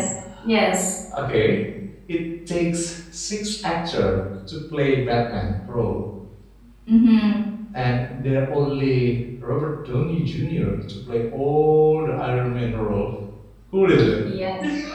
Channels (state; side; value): identical; both; correlation 1.00